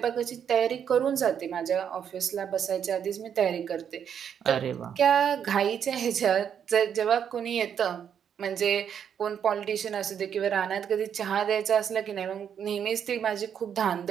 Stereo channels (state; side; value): quieter; left; 8.3 dB